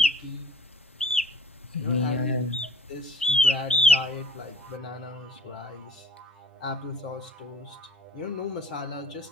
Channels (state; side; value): normal; both; correlation 0.52